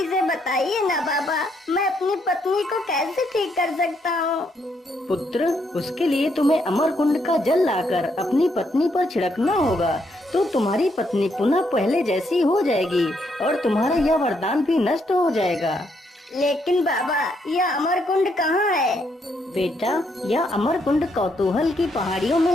से बताइए ना बाबा, मैं अपनी पत्नी को कैसे ठीक कर सकता हूँ? पुत्र, उसके लिए तुम्हें अमर कुंड का जल लाकर अपनी पत्नी पर छिड़कना होगा तो तुम्हारी पत्नी पुनः पहले जैसी हो जाएगी और तुम्हारा यह वरदान भी नष्ट हो जाएगा। लेकिन बाबा, यह अमर कुंड कहाँ है? बेटा, यह अमर कुंड कौतूहल की पहाड़ियों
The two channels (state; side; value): normal; both; correlation 0.75